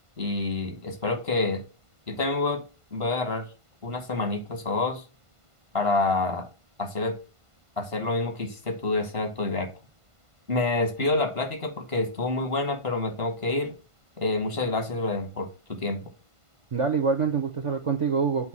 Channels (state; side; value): late; left; 1.5 ms